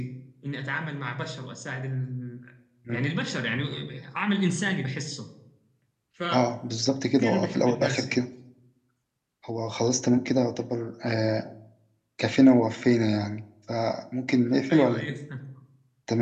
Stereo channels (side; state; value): both; identical; correlation 1.00